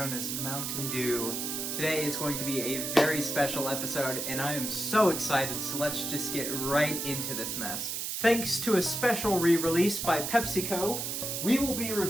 as Mountain Dew. Today is going to be a very special episode, and I am so excited, so let's just get right into this mess. Thanks to a special re-release by PepsiCo, we will be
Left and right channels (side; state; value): right; noise; hiss, 3 dB below the sound